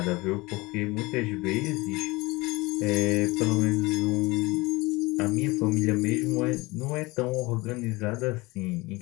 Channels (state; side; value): quieter; right; 22.9 dB